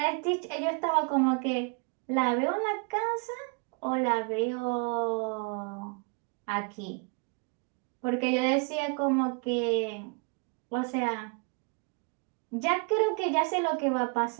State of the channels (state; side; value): quieter; left; 33.9 dB